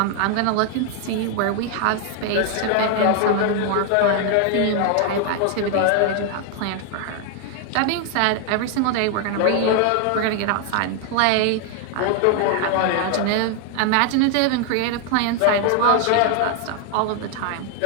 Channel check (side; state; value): both; different; correlation 0.00